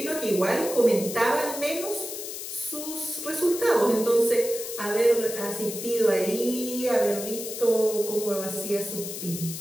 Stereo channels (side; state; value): left; noise; hiss, 8 dB below the sound